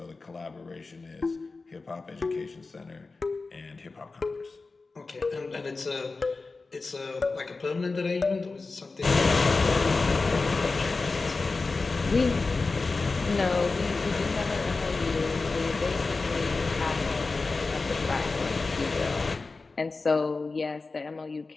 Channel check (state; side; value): quieter; right; 3.9 dB